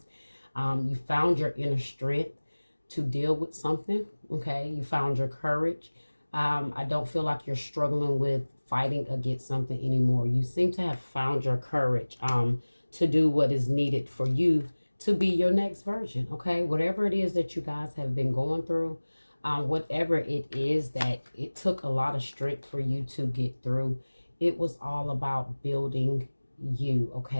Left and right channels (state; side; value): inverted; both; correlation -1.00